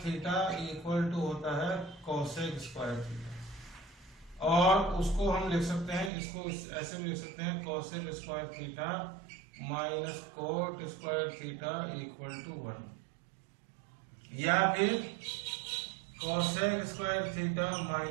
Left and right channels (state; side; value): drops out; left; at 6.1 s